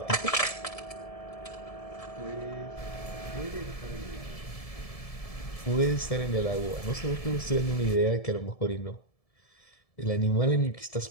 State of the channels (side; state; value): right; late; 1.7 ms